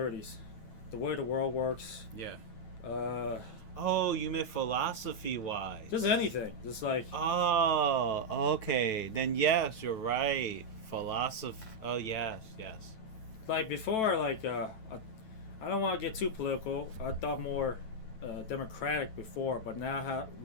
The way the world works. Yeah. Oh, you meant philosophy-wise. Just anything. Just like... Oh, okay. Then yes, you're right. Philosophy. Oh, yes. Like before, like, I don't want to get too political. I thought more democratic before, but now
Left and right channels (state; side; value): late; right; 9.2 ms